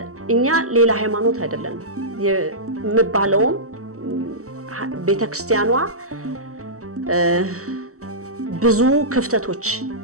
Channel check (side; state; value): left; late; 0.64 ms